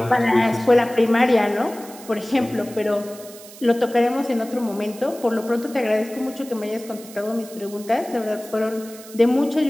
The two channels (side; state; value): right; noise; hiss, 18 dB below the sound